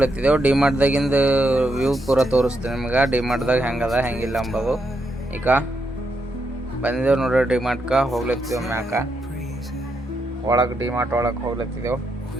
ಡಿಮಾರ್ಟ್ದಾಗಿಂದು ವ್ಯೂ ಪೂರ ತೋರಿಸ್ತೀನಿ ನಿಮ್ಗೆ. ಡಿಮಾರ್ಟ್ದಾಗ ಹೆಂಗದ ಹೆಂಗಿಲ್ಲ ಅಂಬೋದು. ಈಗ ಬಂದಿದ್ದೇವೆ ನೋಡ್ರಿ, ಡಿಮಾರ್ಟ್ಗೆ ಹೋಗ್ಲತ್ತಿದ್ದೆವು. ಮ್ಯಾಕ ಒಳಗೆ ಡಿಮಾರ್ಟ್ ಒಳಗೆ ಹೋಗ್ಲತ್ತಿದ್ದೆವು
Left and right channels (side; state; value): both; normal; correlation 0.81